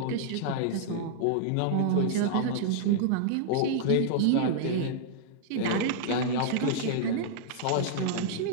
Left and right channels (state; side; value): different; both; correlation -0.01